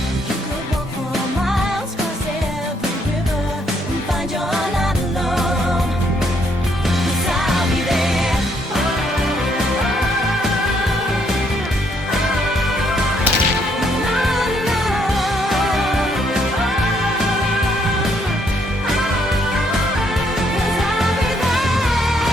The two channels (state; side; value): normal; both; correlation 0.71